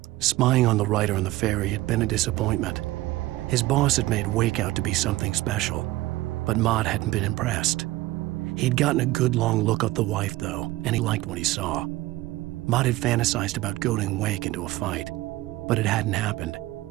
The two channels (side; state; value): left; quieter; 17.8 dB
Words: spying on the writer on the ferry had been a disappointment. His boss had made Wake out to be something special, but Mott hadn't been impressed. He'd gotten a good long look at the wife, though, and he liked what he saw. Mott had fantasized about goading Wake into a fight, but it hadn't happened.